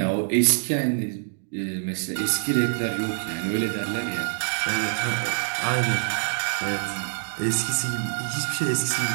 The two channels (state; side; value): silent; left; digital silence